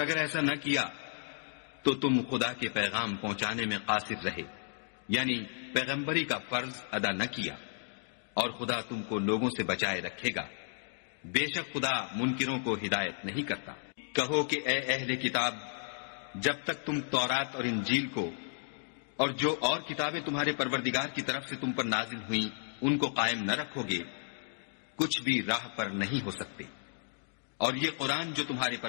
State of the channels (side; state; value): right; silent; digital silence